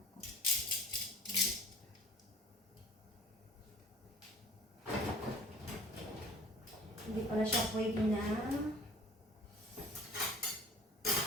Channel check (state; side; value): normal; both; correlation 0.48